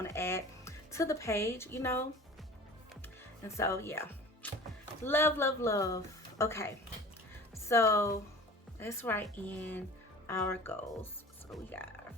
to add to the page, you know. And so yeah, love, love, love. Okay, so let's write in our goals. So we got our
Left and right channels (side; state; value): both; normal; correlation 0.41